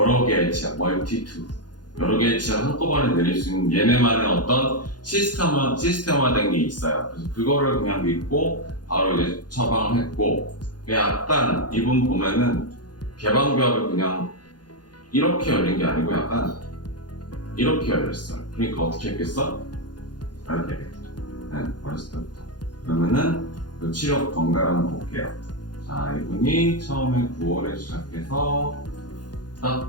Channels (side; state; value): right; late; 0.70 ms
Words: 개의 치아, multi-tooth. 여러 개의 치아를 한꺼번에 내릴 수 있는 얘네만의 어떤 시스템화된 게 있어요. 그래서 그거를 그냥 믿고 바로 이제 처방을 했고, 약간 이분 보면은 개방교합을 그냥 이렇게 열린 게 아니고 약간 이렇게 열렸어요. 그러니까 어떻게 했겠어? 이렇게 했겠죠. 네, 어렸을 때부터. 그러면은 그 치료 경과를 한번 볼게요. 자, 이분이 처음에 9월에 시작해서